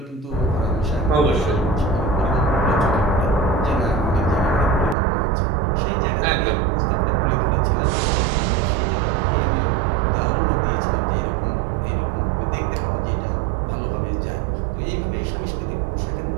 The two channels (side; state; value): left; drops out; at 5.0 s